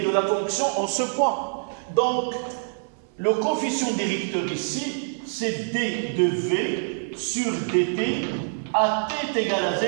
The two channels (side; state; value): left; silent; 62 dB below the other